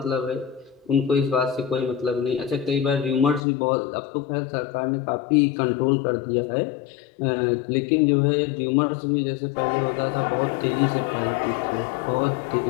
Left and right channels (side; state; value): right; drops out; at 3.4 s